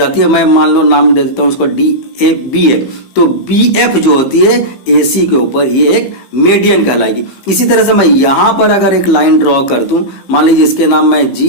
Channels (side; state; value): right; late; 15 ms